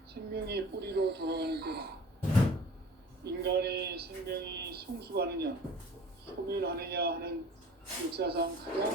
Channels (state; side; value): normal; both; correlation 0.44